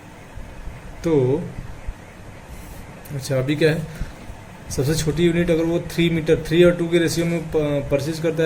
तो अच्छा, अभी क्या है, सबसे छोटी यूनिट अगर वो 3 और 2 के रेशियो में परचेज करता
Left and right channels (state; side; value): identical; both; correlation 1.00